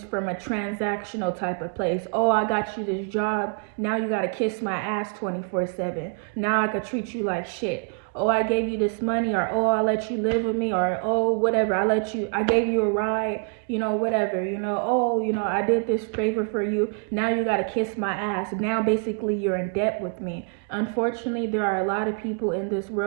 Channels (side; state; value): left; quieter; 39.6 dB